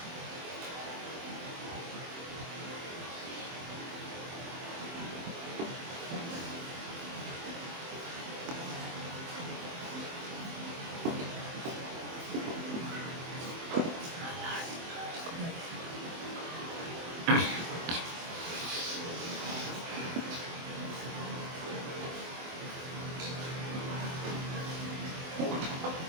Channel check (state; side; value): late; left; 24 ms